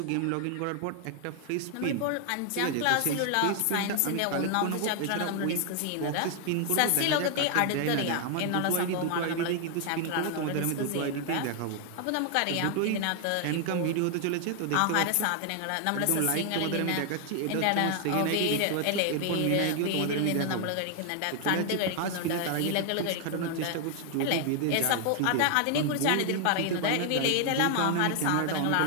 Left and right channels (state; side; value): different; both; correlation 0.00